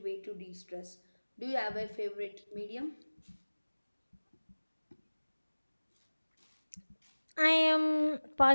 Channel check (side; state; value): both; inverted; correlation -1.00